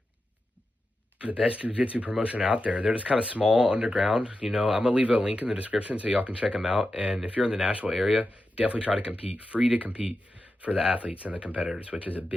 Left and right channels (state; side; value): normal; both; correlation 0.90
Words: the best jiu-jitsu promotion out there. They're just kind of small, underground. I'm going to leave a link in the description so y'all can check them out. And if you're in the Nashville area, definitely try to compete. Free to compete for the athletes and the competitors, which is a